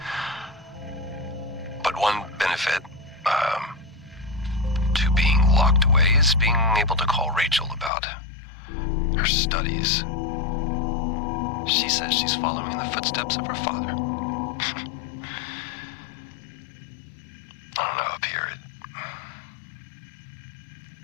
But one benefit to being locked away is being able to call Rachel about her studies. She says she's following in the footsteps of her father. I don't know, up here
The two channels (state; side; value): drops out; right; at 7.9 s